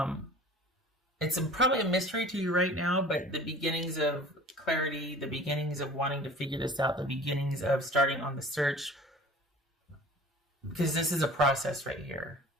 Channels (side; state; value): both; normal; correlation 0.45